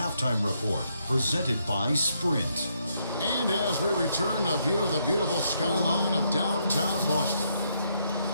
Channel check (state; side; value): inverted; both; correlation -0.75